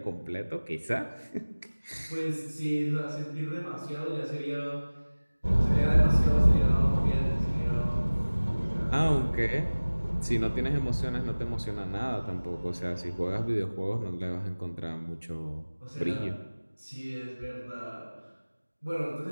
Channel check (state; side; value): inverted; both; correlation -1.00